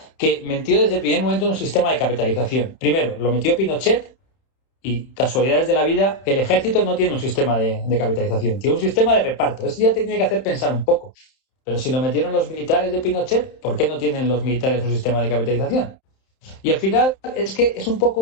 que metió desde el primer momento un sistema de capitalización. Primero, lo metió Pinochet y, casualidades de la vida, el ejército no tiene un sistema de capitalización, tiene un sistema de reparto. Eso ya te tiene que hacer pensar un poco. Pero si lo metieron los militares de Pinochet, ¿por qué no tienen los militares un sistema de capitalización? Y al final es que es un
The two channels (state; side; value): late; right; 31 ms